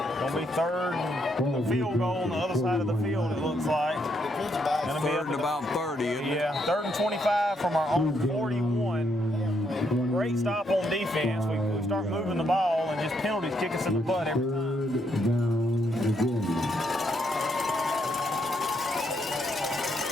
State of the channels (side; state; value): both; normal; correlation 0.76